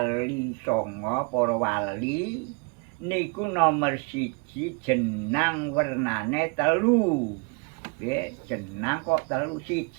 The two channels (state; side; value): quieter; left; 32.2 dB